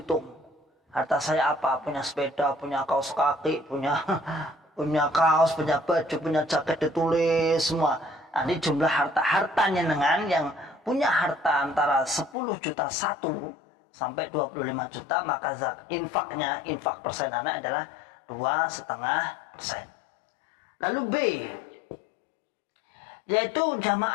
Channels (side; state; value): right; drops out; at 12.4 s